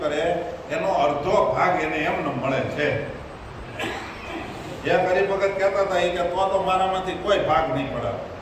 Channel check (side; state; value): both; identical; correlation 1.00